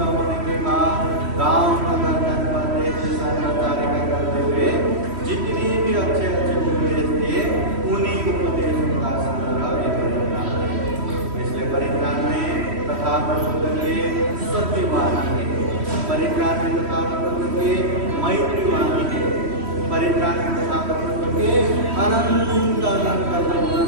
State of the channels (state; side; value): late; left; 3.1 ms